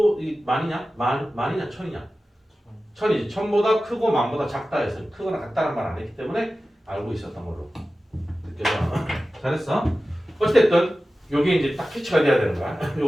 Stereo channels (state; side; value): normal; both; correlation 0.95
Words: 만이냐 천이냐? 천이지. 천보다 크고 만보다 작다 해서 크거나 같다는 말 안 했기 때문에 알고 있었던 걸로 느껴져. 잘했어. 어쨌든 요게 이제 딱 캐치가 돼야 되는 거야.